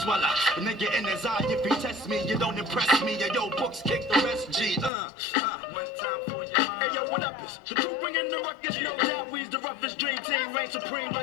swallow. A nigga in his eye, if he test me, you don't impress me. Yo, books kick the rest, G. One time for your mind. Hey, yo, what up? The crew bringing the ruckus. No doubt we's the roughest dream team. Reign supreme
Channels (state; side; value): drops out; right; at 4.9 s